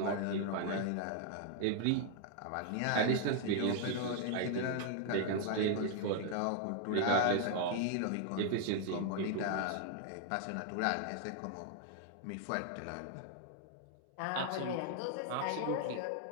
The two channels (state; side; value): different; both; correlation 0.00